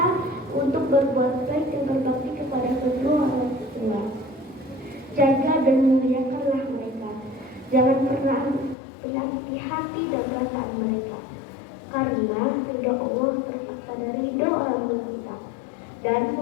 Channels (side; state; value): right; drops out; at 8.8 s